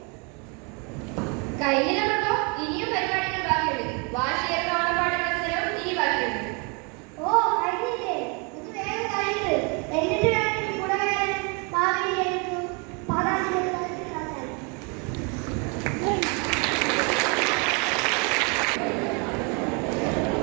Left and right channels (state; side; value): quieter; left; 33.1 dB